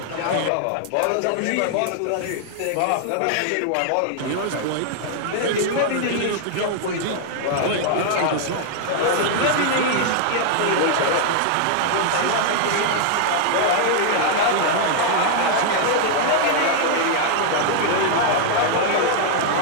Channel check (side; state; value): both; different; correlation -0.01